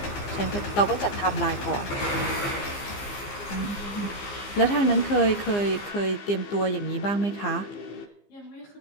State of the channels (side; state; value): right; late; 15 ms